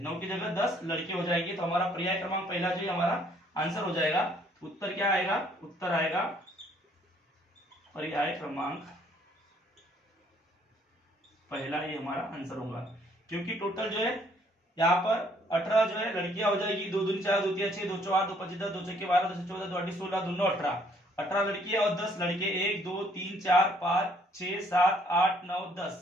9 की जगह 10 लड़के हो जाएंगे। तो हमारा पर्याय क्रमांक पहला जो है हमारा आंसर हो जाएगा। उत्तर क्या आएगा, उत्तर आएगा पर्याय क्रमांक पहला, ये हमारा आंसर होगा। क्योंकि टोटल जो है यहाँ पर 18 जो है लड़कियां हो जाएगी, 2 दूनी 4 2 3 6 2 4 2 5 10 2 6 12 2 14 2 8 16 2 9 18, 18 लड़कियां और 10 लड़के, 1 2 3 4 5 6 7 8 9 10।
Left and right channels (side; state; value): both; normal; correlation 0.64